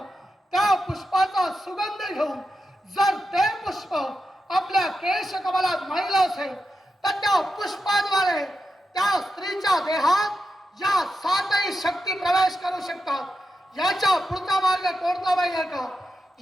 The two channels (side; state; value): both; normal; correlation 0.88